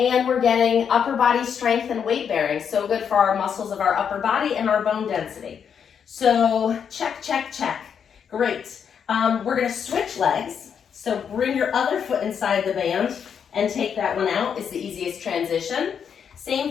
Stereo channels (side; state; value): right; quieter; 7.5 dB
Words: we're getting upper body strength and weight bearing, so good for our muscles of our upper body and our bone density. So check, check, check, great. We're gonna switch legs. So bring your other foot inside the band and take that one out. It's the easiest transition.